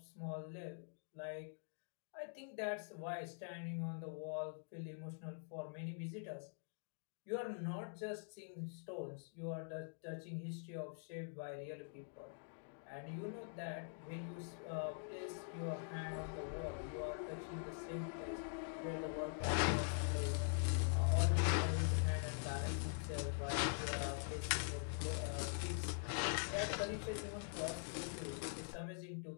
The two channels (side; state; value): right; silent; digital silence